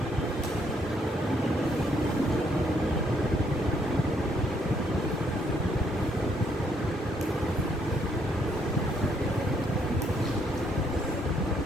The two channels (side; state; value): both; normal; correlation 0.71